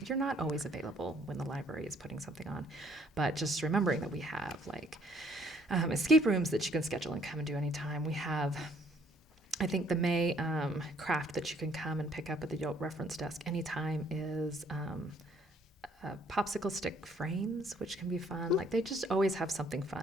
you're not always available when the library is putting something on. But just remembering that we have escape rooms that you can schedule and come and do anytime. We have, I think the May craft that you can come and pick up at the Yote reference desk anytime is popsicle stick frames, which can be fun. They just always have something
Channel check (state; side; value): normal; both; correlation 0.63